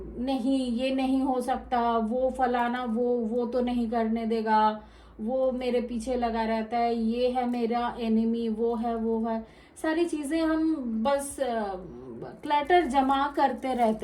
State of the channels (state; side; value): identical; both; correlation 1.00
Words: नहीं ये नहीं हो सकता, वो फलाना वो तो नहीं करने देगा, वो मेरे पीछे लगा रहता है, ये है मेरा एनिमी, वो है सारी चीजें हम बस क्लटर जमा करते